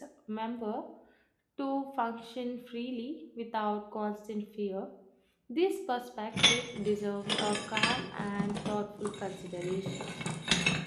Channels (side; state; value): both; identical; correlation 1.00